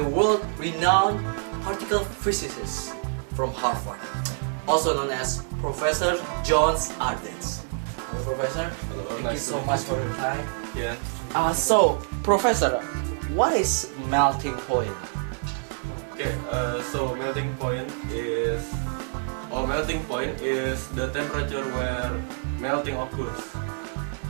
world-renowned particle physicist from Harvard, also known as Professor John Ardens. Hello, Professor. Hello, thank nice you so to meet much you. for your time. Yeah. So, Professor, what is melting point? Okay. So melting point is the temperature where melting occurs.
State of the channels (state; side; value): silent; left; 61 dB below the other